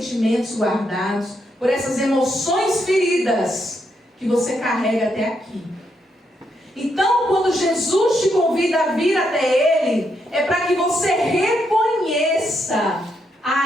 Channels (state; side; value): normal; both; correlation 0.79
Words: guardados, por essas emoções feridas que você carrega até aqui. Então, quando Jesus te convida a vir até Ele, é para que você reconheça